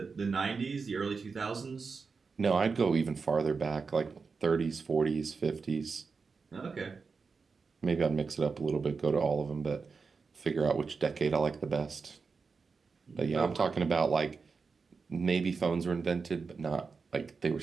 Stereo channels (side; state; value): left; quieter; 4.9 dB